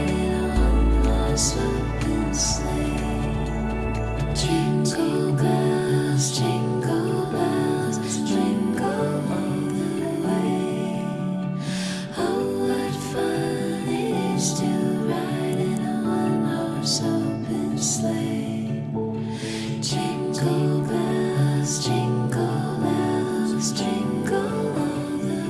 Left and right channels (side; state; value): both; identical; correlation 1.00